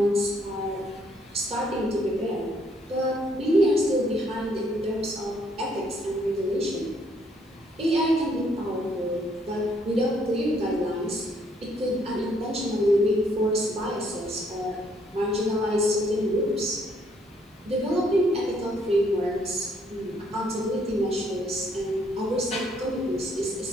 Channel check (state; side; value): normal; both; correlation 0.68